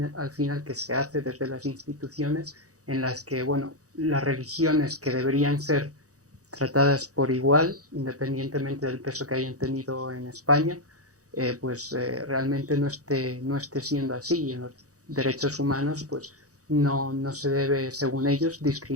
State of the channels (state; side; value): late; left; 0.66 ms